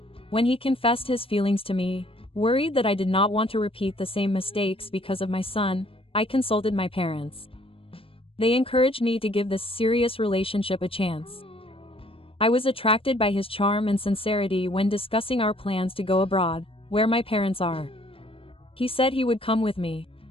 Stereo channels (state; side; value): late; right; 0.27 ms